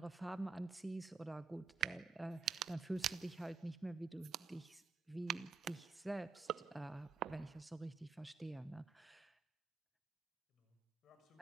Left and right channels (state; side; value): quieter; left; 4.4 dB